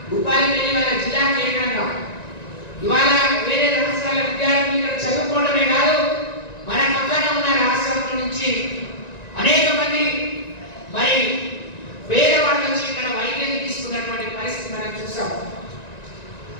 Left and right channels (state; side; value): late; right; 1.9 ms